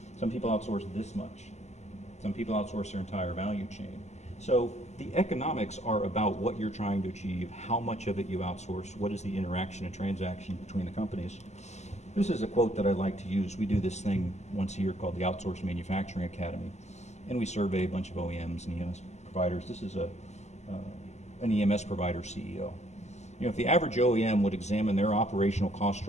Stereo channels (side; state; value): right; late; 0.33 ms